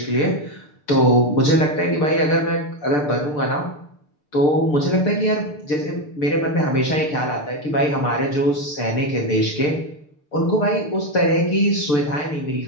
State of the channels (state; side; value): late; right; 6.7 ms